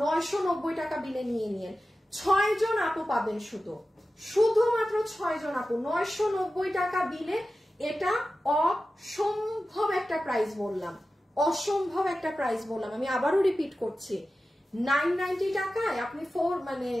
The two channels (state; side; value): normal; both; correlation 0.94